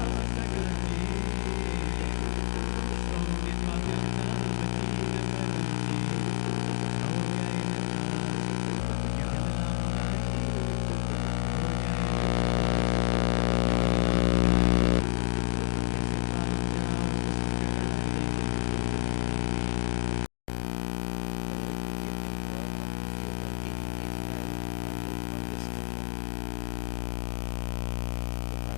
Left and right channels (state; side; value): silent; right; 58 dB below the other